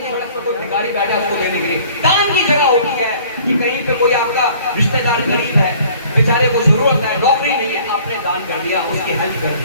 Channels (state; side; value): inverted; both; correlation -0.53